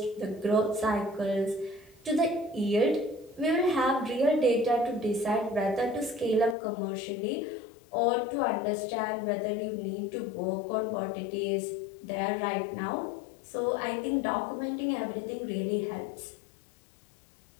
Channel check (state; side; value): drops out; right; at 6.6 s